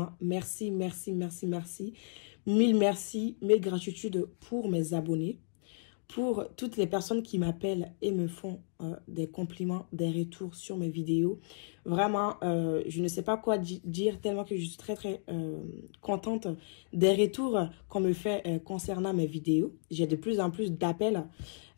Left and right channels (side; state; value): right; silent; digital silence